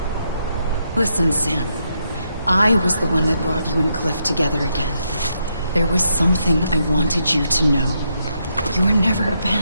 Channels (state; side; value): inverted; both; correlation -0.79